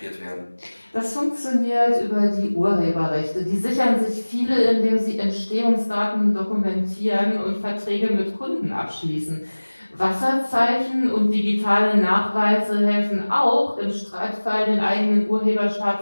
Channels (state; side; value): inverted; both; correlation -1.00